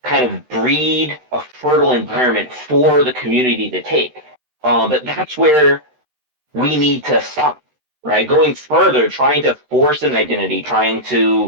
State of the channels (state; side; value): late; left; 13 ms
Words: kind of breed a fertile environment for the community to take. But that's where we need to stop, right? Going further, trying to force an identity, trying